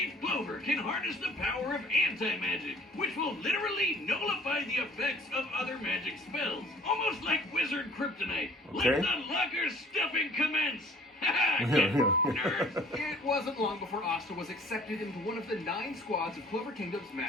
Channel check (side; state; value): both; normal; correlation 0.53